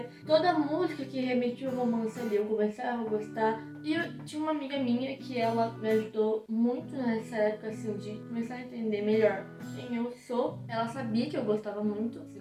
Toda música que remetia ao romance ali, eu começava a gostar. E eu tinha uma amiga minha que ela me ajudou muito nessa época, assim, de começar a entender melhor quem eu sou. Ela sabia que eu gostava muito, assim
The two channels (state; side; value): identical; both; correlation 1.00